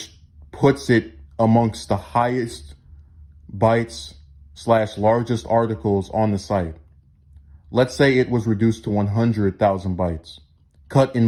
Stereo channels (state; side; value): identical; both; correlation 1.00